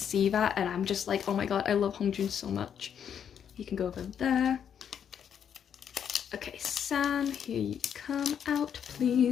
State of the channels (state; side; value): quieter; right; 8.4 dB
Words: that, and I'm just like, oh my god, I love Hongjun so much. He can go over there. Okay, San, here you come out,